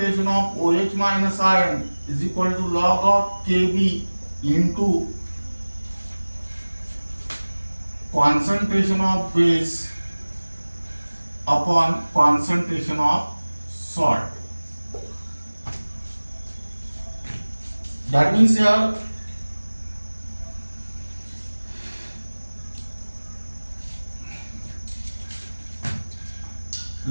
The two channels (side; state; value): both; inverted; correlation -1.00